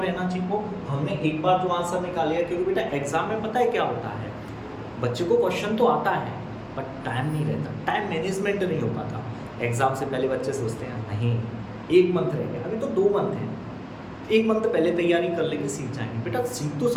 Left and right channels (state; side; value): identical; both; correlation 1.00